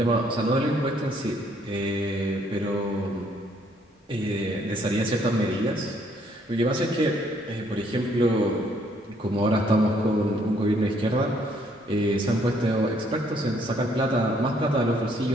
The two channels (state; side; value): normal; both; correlation 0.67